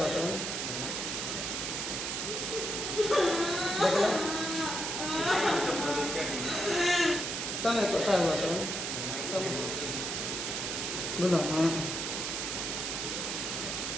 तो देखला तमे कथा हुआ तो बोलो हां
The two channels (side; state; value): right; noise; hiss, 2 dB below the sound